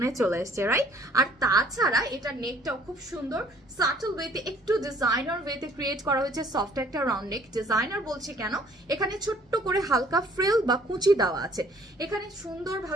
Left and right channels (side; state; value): both; normal; correlation 0.58